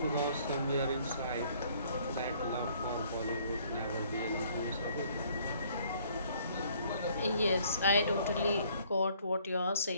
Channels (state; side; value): inverted; both; correlation -0.61